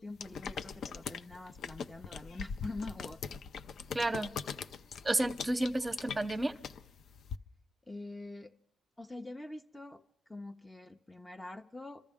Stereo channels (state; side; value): normal; both; correlation 0.90